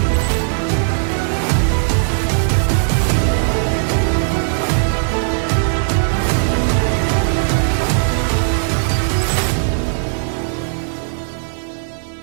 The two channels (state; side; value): silent; left; 57 dB below the other